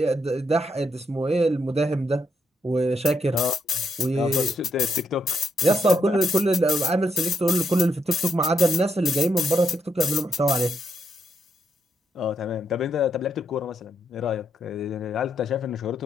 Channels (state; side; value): normal; both; correlation 0.78